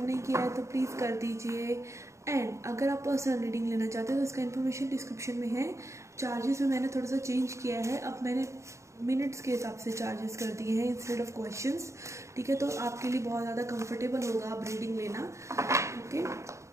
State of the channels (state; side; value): late; left; 0.14 ms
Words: नहीं किया है तो प्लीज़ कर दीजिए। एंड अगर आप पर्सनल रीडिंग लेना चाहते हैं तो इसका इन्फॉर्मेशन डिस्क्रिप्शन में है। चार्जेस में मैंने थोड़ा सा चेंज किया है, अब मैंने मिनट्स के हिसाब से चार्जेस कर दिए हैं इंस्टेड ऑफ क्वेश्चंस। ठीक है, तो आपके लिए बहुत ज़्यादा कंफर्टेबल होगा आप रीडिंग लेना। ओके,